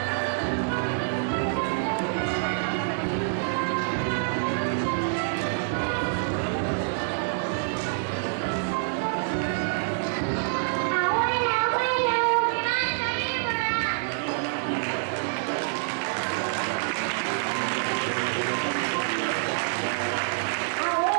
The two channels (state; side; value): silent; left; digital silence